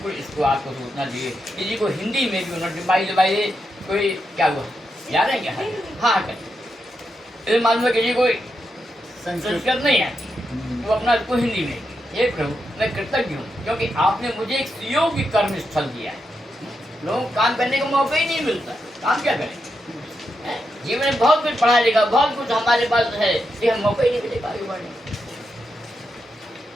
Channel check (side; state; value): both; normal; correlation 0.85